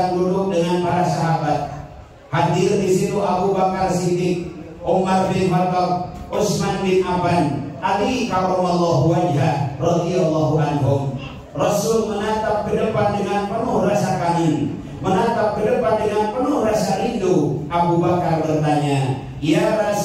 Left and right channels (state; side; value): identical; both; correlation 1.00